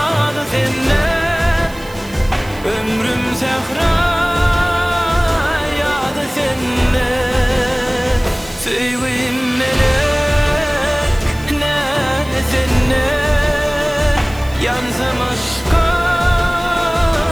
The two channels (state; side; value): noise; right; hiss, 22 dB below the sound